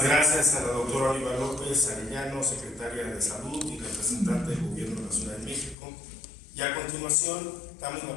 gracias a la doctora Oliva López Arellano, secretaria de Salud y representante del Gobierno de la Ciudad de México. Y a continuación damos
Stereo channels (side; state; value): right; drops out; at 5.8 s